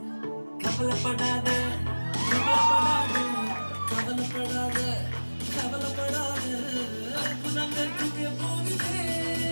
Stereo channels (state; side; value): inverted; both; correlation -1.00